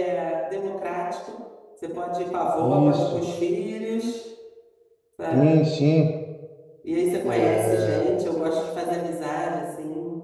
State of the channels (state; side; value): identical; both; correlation 1.00